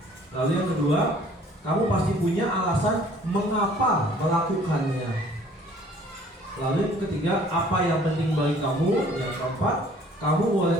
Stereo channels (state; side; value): normal; both; correlation 0.56